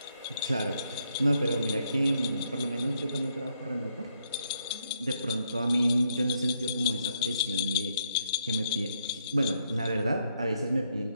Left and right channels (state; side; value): inverted; both; correlation -0.76